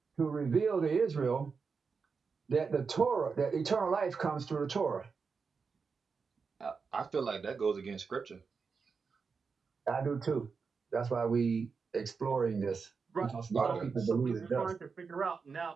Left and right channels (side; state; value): left; quieter; 5.2 dB